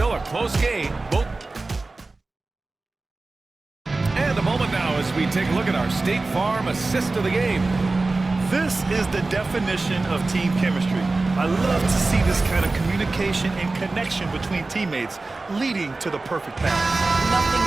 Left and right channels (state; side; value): quieter; left; 3.4 dB